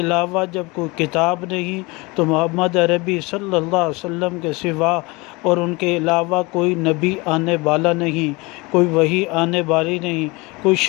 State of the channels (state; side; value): quieter; right; 25.1 dB